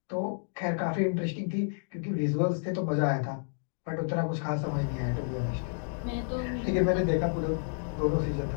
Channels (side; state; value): right; silent; digital silence